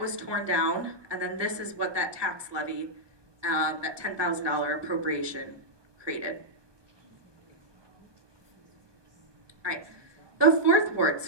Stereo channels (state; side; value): late; left; 1.2 ms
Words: torn down, and then this is what that tax levy, that $10,000 appropriation created. All right, the fourth ward